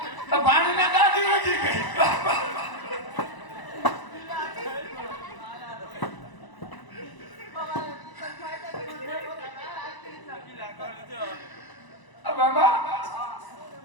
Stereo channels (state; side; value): late; right; 1.0 ms